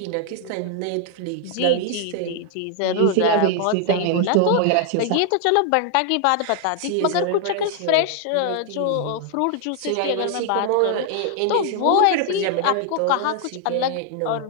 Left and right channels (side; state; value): both; different; correlation 0.00